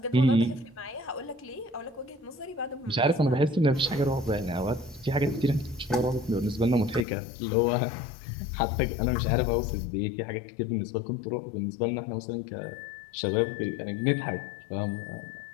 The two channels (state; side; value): drops out; right; at 7.1 s